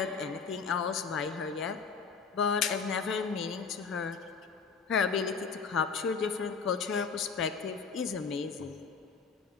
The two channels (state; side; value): quieter; right; 5.5 dB